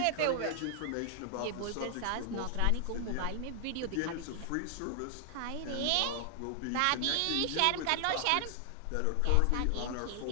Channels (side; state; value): both; different; correlation 0.00